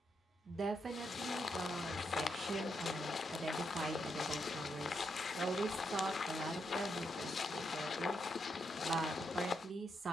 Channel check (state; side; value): normal; both; correlation 0.81